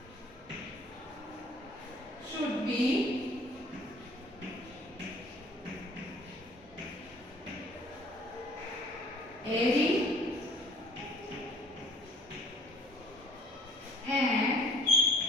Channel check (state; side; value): normal; both; correlation 0.55